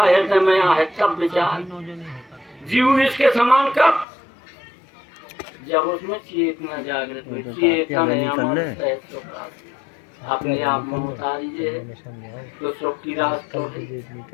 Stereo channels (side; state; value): right; drops out; at 4.0 s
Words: हृदय में है तब विचार। जीव इसके समान कब, जब उसमें चेतना जागृत हुई, चेतन अपने आप में उतारी है तो सुख की रास्ता है।